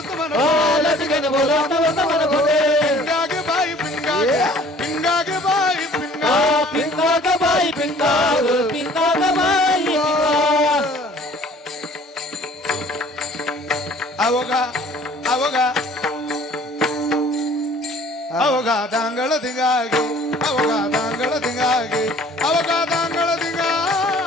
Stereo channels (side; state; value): both; normal; correlation 0.52